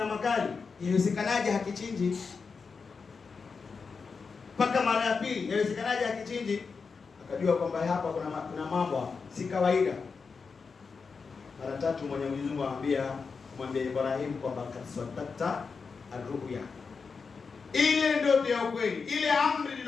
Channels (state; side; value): quieter; right; 5.1 dB